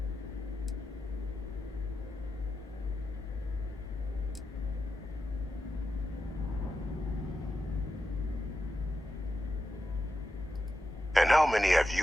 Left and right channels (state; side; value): normal; both; correlation 0.89